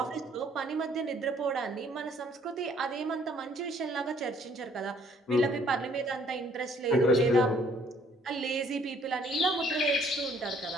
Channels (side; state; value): both; normal; correlation 0.62